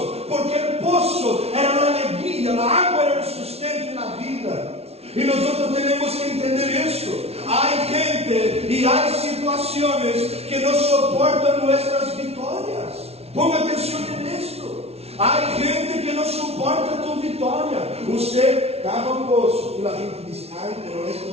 porque el pozo era la alegría, la agua era el sustento en la vida. Y nosotros tenemos que entender esto. Hay gente y hay situaciones que no soportan nuestras victorias. Ponga atención en esto. Hay gente que no soporta tu victoria. Usted cava un pozo y la gente dice: ay, pero esto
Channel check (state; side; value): late; left; 0.30 ms